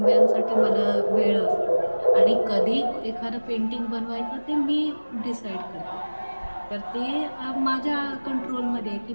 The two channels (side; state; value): both; inverted; correlation -1.00